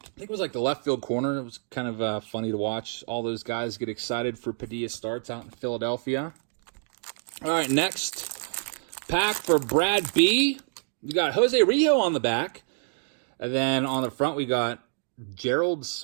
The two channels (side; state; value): left; silent; digital silence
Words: think it was like the left field corner. It was kind of funny to watch all those guys get excited for Padilla starts out in Philadelphia. All right, next pack for Brad B. You got Jose Rijo on the back. And then on the front, we got Gerald